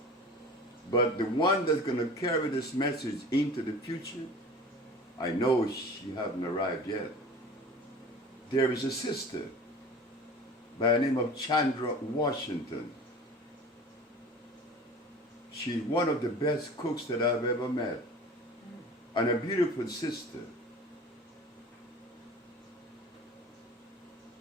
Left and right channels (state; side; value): normal; both; correlation 0.40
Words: But the one that's going to carry this message into the future, I know she hasn't arrived yet. There is a sister by the name of Chandra Washington. She's one of the best cooks that I've ever met. And a beautiful sister.